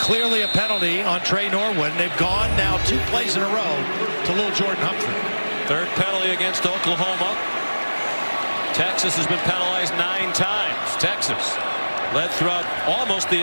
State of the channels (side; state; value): both; inverted; correlation -1.00